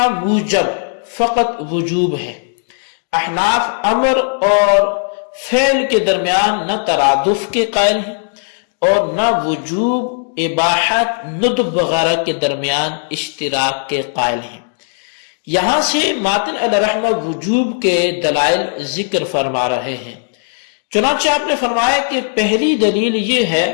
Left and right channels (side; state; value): right; silent; digital silence